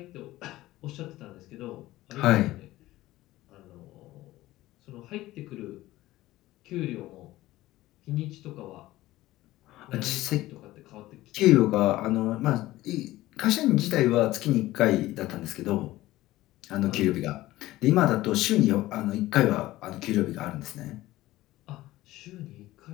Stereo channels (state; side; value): quieter; right; 16.8 dB